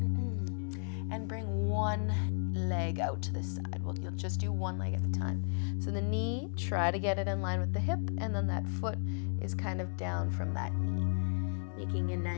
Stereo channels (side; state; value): right; silent; 55 dB below the other